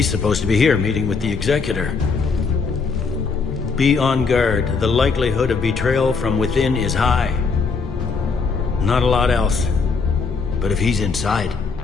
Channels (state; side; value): quieter; right; 4.9 dB